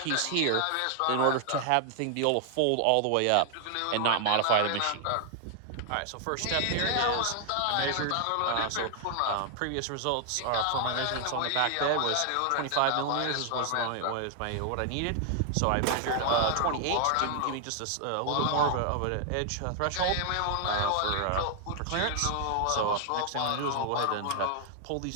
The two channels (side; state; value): both; different; correlation 0.00